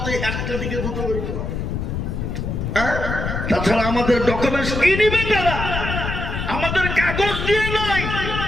1টা দিকে 2টো বেরোতে পারে। তাছাড়া আমাদের ডকুমেন্টস কি নিবে তারা? আমাদের কাগজ দিয়ে নয়,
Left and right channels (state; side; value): noise; left; rumble, 3 dB below the sound